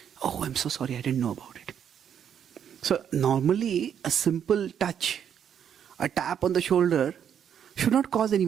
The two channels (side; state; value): left; quieter; 8.6 dB